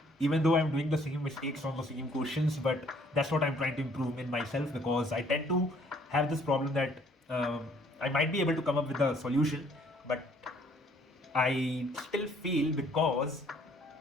even though I'm doing the same mistakes on the same questions. But that's what I'm trying to improve in myself, because I tend to have this problem that I might be able to come up with a solution, but I still feel, because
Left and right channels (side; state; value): both; normal; correlation 0.61